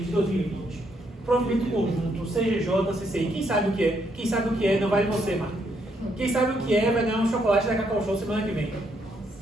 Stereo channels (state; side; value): normal; both; correlation 0.74